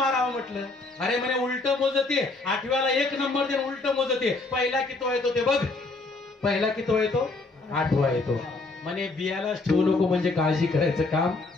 म्हटलं. अरे म्हणे उलट मोजते, 8व्याला 1 नंबर देऊन उलट मोजते, पहिला किती येतो ते बघ, पहिला किती येतो? 8वा येतो. म्हणे बियालाच ठेवू नको, म्हणजे काळजी करायचं काम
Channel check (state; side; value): quieter; right; 3.4 dB